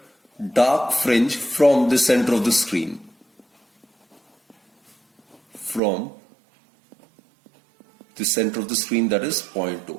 dark fringe from the center of the screen. From the center of the screen, that is point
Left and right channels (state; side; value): drops out; left; at 5.8 s